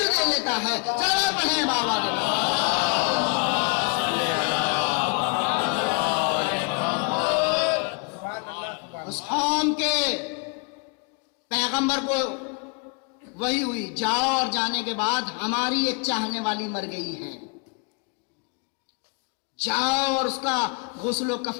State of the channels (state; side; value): quieter; right; 34.7 dB